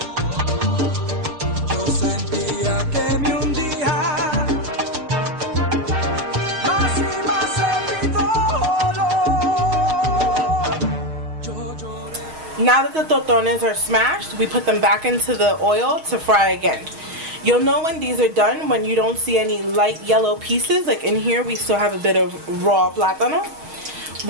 Now that the tostones are smashed, we put them back into the oil to fry again. You'll know when these are done when you don't see any light yellow pieces. Like in here we still have a bit of raw plátano.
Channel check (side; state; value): left; late; 6.4 ms